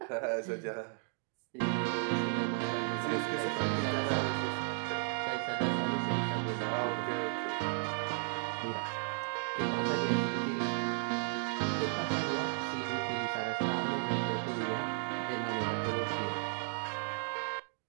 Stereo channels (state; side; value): silent; left; 55 dB below the other